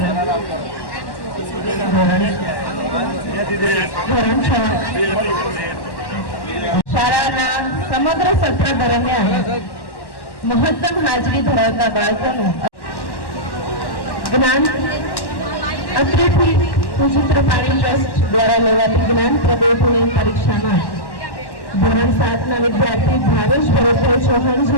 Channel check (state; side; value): late; right; 1.1 ms